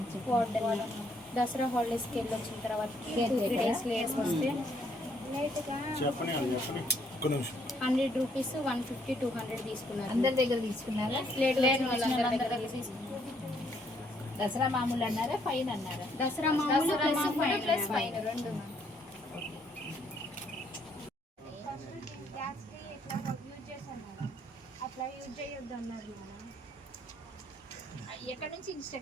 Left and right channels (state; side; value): normal; both; correlation 0.69